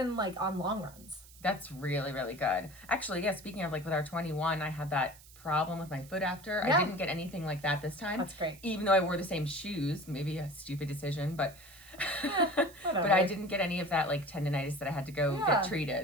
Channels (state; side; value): noise; right; hiss, 21 dB below the sound